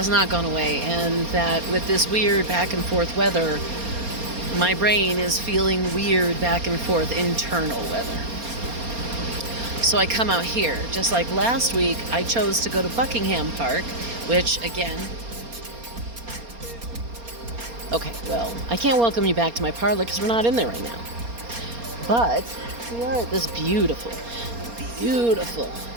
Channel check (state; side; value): late; left; 4.3 ms